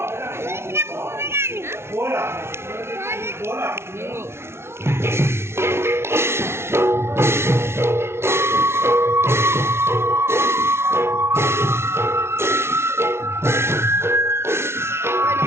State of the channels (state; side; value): late; left; 0.12 ms